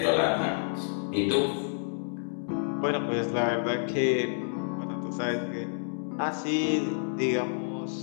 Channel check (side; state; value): right; silent; digital silence